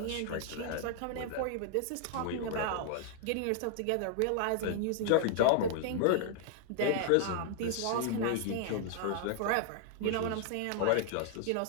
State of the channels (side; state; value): both; different; correlation -0.01